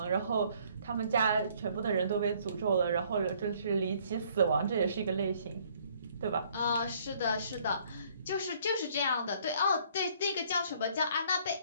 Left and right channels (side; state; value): both; inverted; correlation -0.62